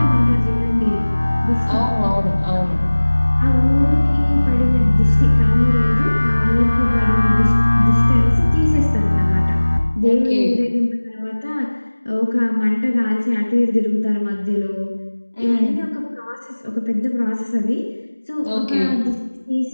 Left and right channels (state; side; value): inverted; both; correlation -1.00